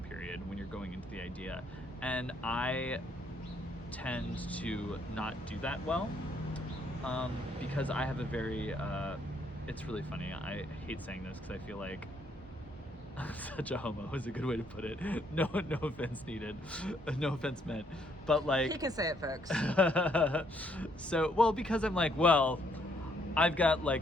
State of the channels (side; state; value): both; normal; correlation 0.70